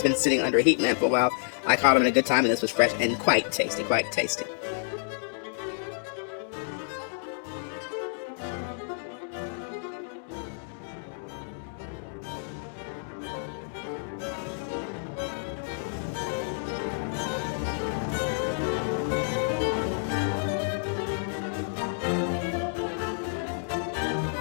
been sitting under a heat lamp for a while. I caught them in a good time, and this was fresh and quite tasty, quite tasty.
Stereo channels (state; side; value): silent; right; digital silence